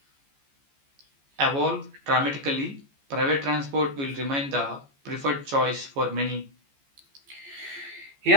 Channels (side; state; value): left; late; 14 ms